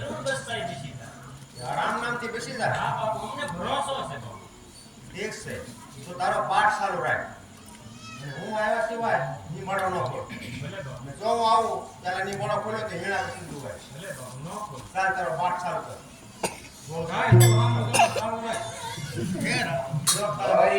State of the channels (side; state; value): both; identical; correlation 1.00